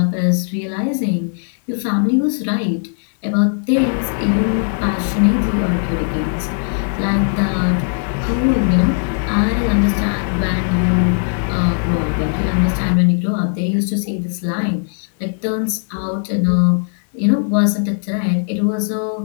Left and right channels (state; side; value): silent; right; 67 dB below the other